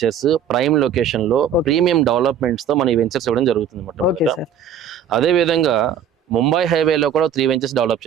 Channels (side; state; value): left; quieter; 7.8 dB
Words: ప్రైమ్ లొకేషన్ లో ప్రీమియం డెవలప్మెంట్స్ తో మన ఈ వెంచర్స్ ఇవ్వడం జరుగుతుంది. అదే విధంగా ముంబై హైవేలో కూడా 3 వెంచర్స్ డెవలప్